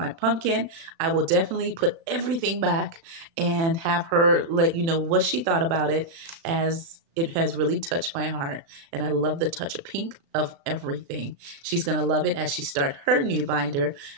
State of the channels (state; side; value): late; left; 36 ms